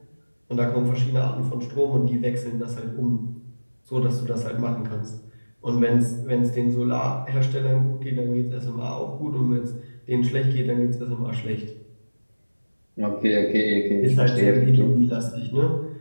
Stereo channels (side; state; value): both; inverted; correlation -1.00